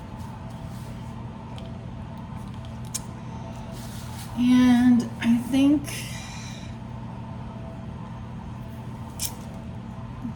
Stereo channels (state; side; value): identical; both; correlation 1.00